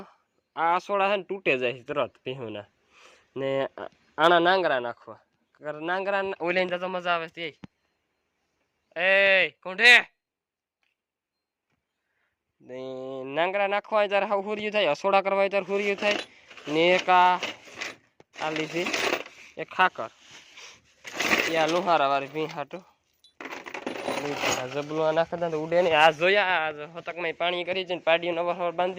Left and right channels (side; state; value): both; identical; correlation 1.00